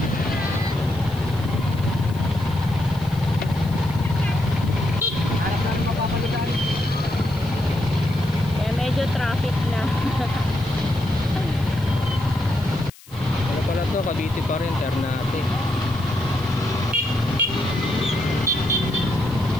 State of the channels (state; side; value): noise; left; hiss, 23 dB below the sound